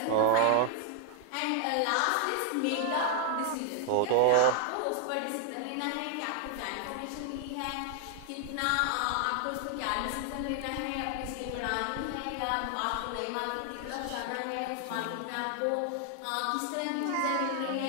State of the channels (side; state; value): both; different; correlation 0.00